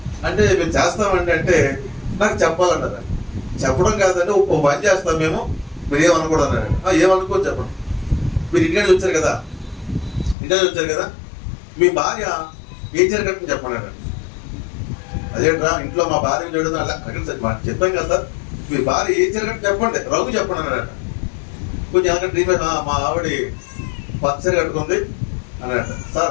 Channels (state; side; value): drops out; right; at 10.4 s